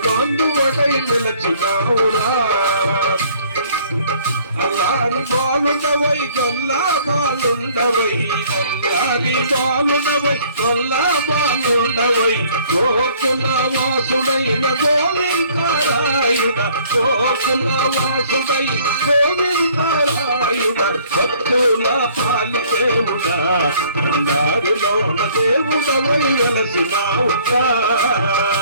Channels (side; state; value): both; inverted; correlation -0.58